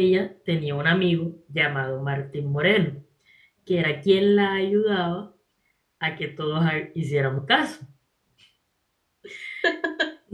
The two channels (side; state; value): both; identical; correlation 1.00